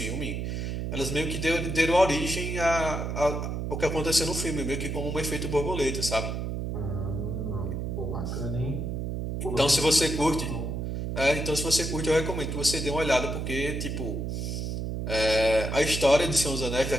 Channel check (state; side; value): noise; right; hum, 3 dB below the sound